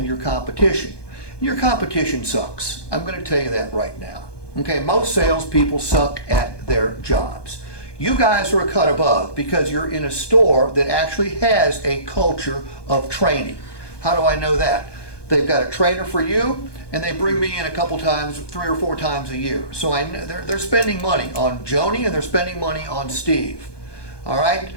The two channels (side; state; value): right; late; 1.2 ms